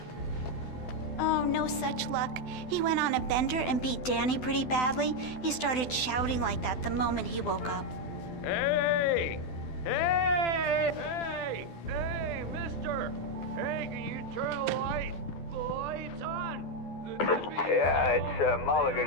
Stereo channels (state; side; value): late; right; 12 ms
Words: Oh, no such luck. He went on a bender and beat Danny pretty badly. He started shouting like that the moment he woke up. Hey! Hey! Hey! Hey, mister! Hey, can you turn the lights on? Yeah, it's